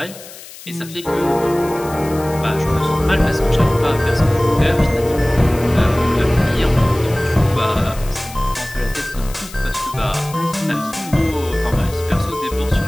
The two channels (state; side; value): noise; left; hiss, 16 dB below the sound